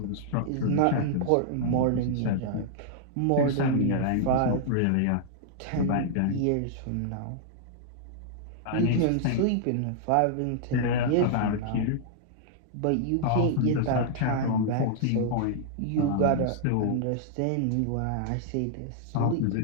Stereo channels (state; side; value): different; both; correlation -0.01